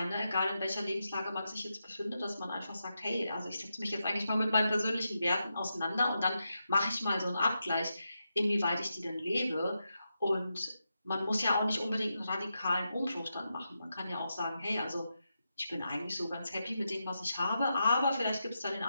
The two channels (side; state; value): both; inverted; correlation -0.87